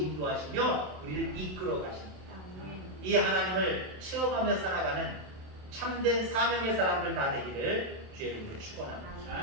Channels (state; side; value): late; left; 27 ms